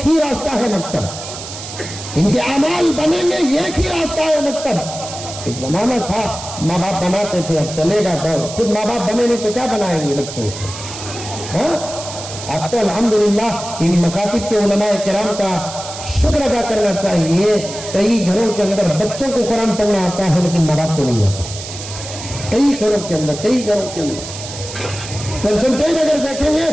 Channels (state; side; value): noise; right; hiss, 10 dB below the sound